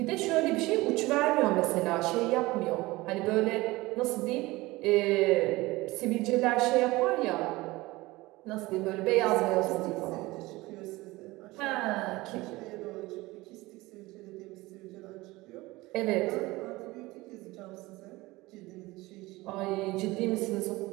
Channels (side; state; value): left; quieter; 20.4 dB